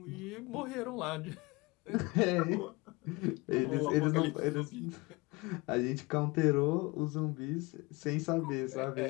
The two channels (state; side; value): quieter; right; 25.1 dB